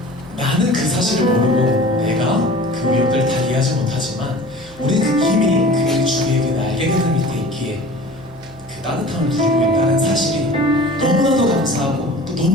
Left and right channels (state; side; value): noise; left; hum, 22 dB below the sound